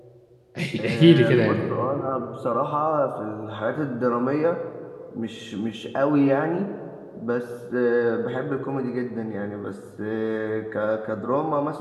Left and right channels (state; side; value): identical; both; correlation 1.00